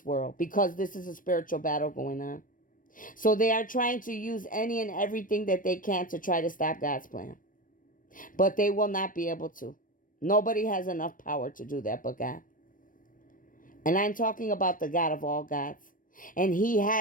world, because this is a spiritual battle going on. So they are trying to use any and everything that they can to try to stop God's plan. But they will not be able to. Nobody has enough power to do that but God. And I'm talking about the God of all gods. And he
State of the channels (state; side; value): late; right; 0.40 ms